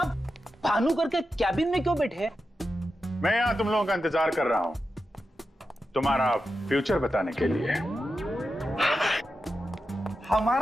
भानुकर के कैबिन में क्यों बैठे हैं? मैं यहां तुम लोगों का इंतजार कर रहा हूं, तुम्हारा फ्यूचर बताने के लिए।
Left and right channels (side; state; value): both; normal; correlation 0.90